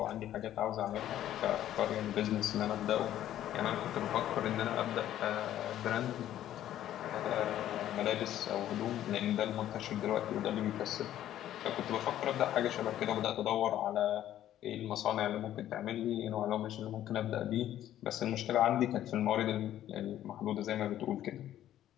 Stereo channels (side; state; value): right; quieter; 12.2 dB